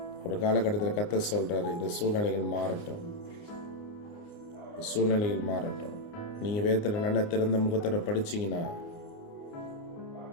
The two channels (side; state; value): right; late; 29 ms